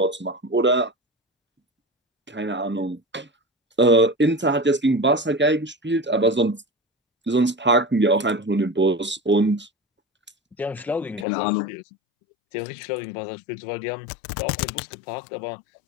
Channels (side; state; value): right; drops out; at 11.2 s